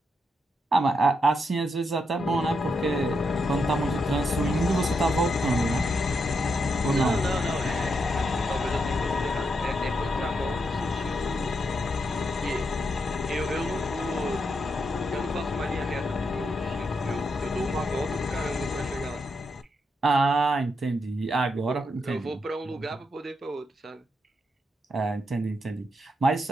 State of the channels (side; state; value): both; normal; correlation 0.82